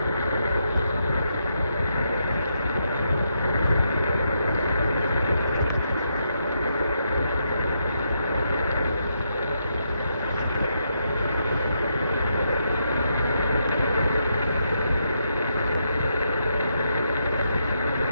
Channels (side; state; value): both; inverted; correlation -0.80